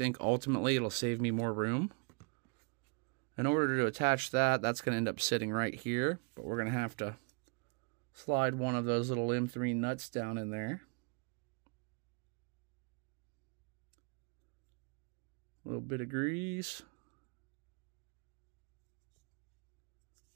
ultimately it'll save me more room. In order to attach that, that's going to end up sitting right here, but we're going to have to slide one of those little M3 nuts down in there. A little bit of grease.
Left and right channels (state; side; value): quieter; left; 35.3 dB